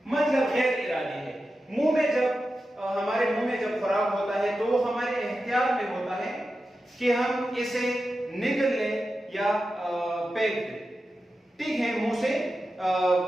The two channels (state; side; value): normal; both; correlation 0.91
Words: مطلب غیر ارادی ہے. منہ میں جب ہمارے منہ میں جب خوراک ہوتا ہے تو وہ ہمارے اختیار میں ہوتا ہے کہ ہم اسے نگل لیں یا پھینک دے، ٹھیک ہے، منہ سے